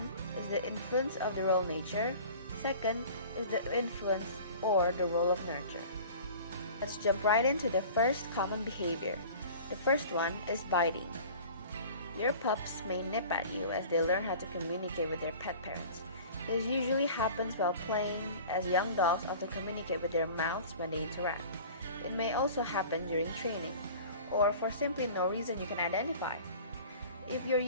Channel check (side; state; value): both; inverted; correlation -0.42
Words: is the influence of the role nature. Second is the influence or the role of nurture. Let's jump right into the first common behavior. The first one is biting. Your pups may nip at you as they learn how to communicate with their pet parents. This usually happens while playing, as young dogs often communicate with their mouths when they interact. It may also happen during training, or for simply no reason you can identify. If your